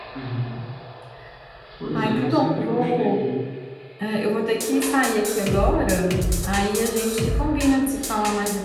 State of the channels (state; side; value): identical; both; correlation 1.00